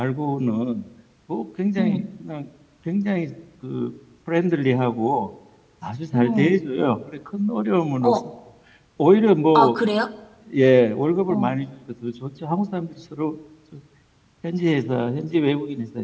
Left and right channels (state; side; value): identical; both; correlation 1.00